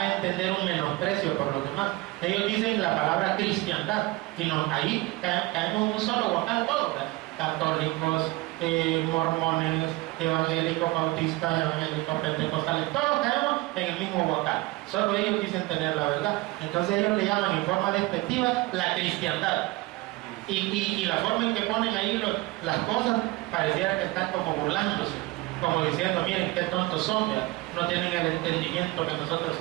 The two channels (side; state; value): left; quieter; 21.0 dB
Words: entender un menosprecio por los demás. Ellos dicen la palabra cristiandad y ahí caemos en un solo guacal todos, ¿verdad? Católicos, mormones, evangélicos, bautistas, evangélicos, pentecostales, todos caemos en el mismo guacal. Solo ellos dicen tener la verdad. Entonces ellos le llaman en forma despectiva la cristiandad. Y la forma en que ponen ahí las cosas pareciera que están como burlándose, como diciendo, miren qué tontos son, ¿verdad? No tienen el entendimiento que nosotros